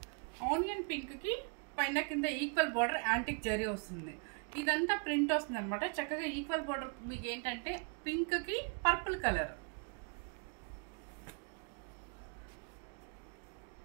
కి పైన కింద ఈక్వల్ బోర్డర్ యాంటిక్ జరీ వస్తుంది. ఇదంతా ప్రింట్ వస్తుంది అనమాట. చక్కగా ఈక్వల్ బోర్డర్ మీకు ఏంటంటే పింక్ కి పర్పుల్ కలర్.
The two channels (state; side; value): quieter; left; 37.7 dB